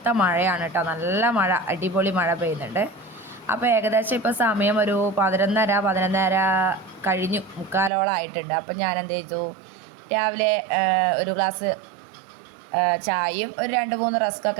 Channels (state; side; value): drops out; left; at 7.9 s